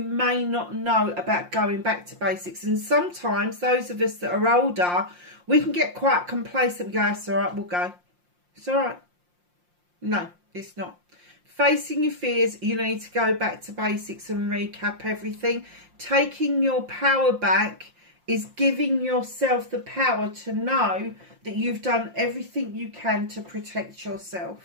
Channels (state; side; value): late; left; 5.7 ms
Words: not know about going back to basics. And sometimes those of us that are older, we can get quite complacent and go, it's all right, we'll go. It's all right. No, it's not. Facing your fears, you need to go back to basics and recap everything. Taking your power back is giving yourself the power to know that you've done everything you can to protect